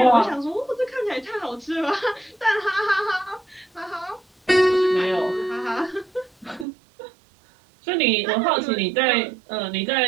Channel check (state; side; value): drops out; left; at 6.7 s